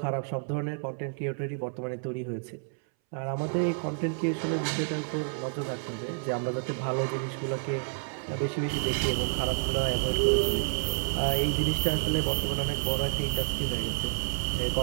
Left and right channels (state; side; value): silent; left; 58 dB below the other